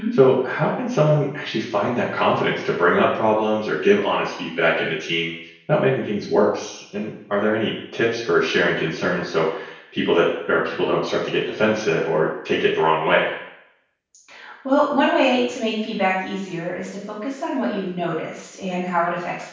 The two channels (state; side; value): identical; both; correlation 1.00